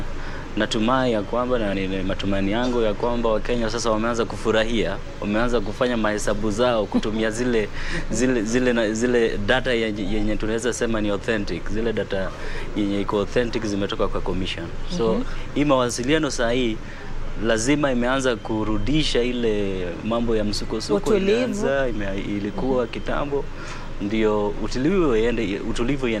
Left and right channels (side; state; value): both; identical; correlation 1.00